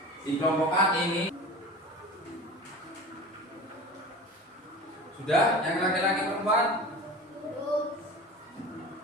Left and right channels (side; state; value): both; normal; correlation 0.35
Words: dikelompokkan ini. Sudah, yang laki-laki perempuan?